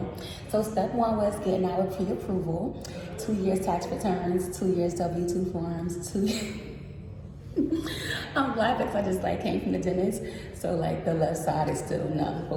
So step 1 was getting our pre-approval, 2 years tax returns, 2 years W-2 forms, 2 I'm laughing because I just came from the dentist. So the left side is still numb,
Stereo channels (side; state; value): both; identical; correlation 1.00